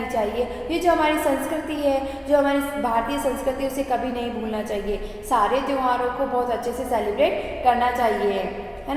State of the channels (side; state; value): both; identical; correlation 1.00